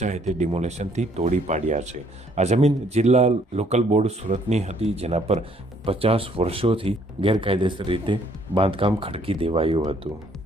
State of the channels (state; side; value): normal; both; correlation 0.64